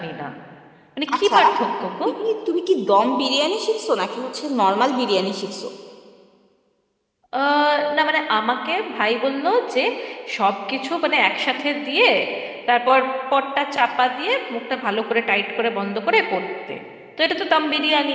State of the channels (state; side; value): identical; both; correlation 1.00